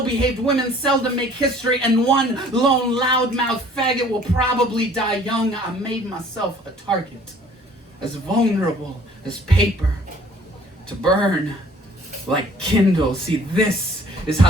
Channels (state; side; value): normal; both; correlation 0.54